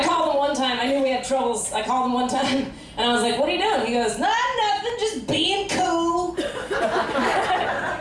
called him one time. I knew we had troubles. I called him one time, and I was like, what are you doing? He goes, nothing, just being cool.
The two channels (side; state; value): both; identical; correlation 1.00